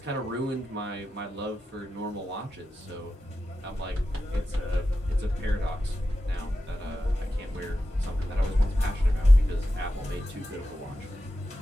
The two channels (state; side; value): normal; both; correlation 0.91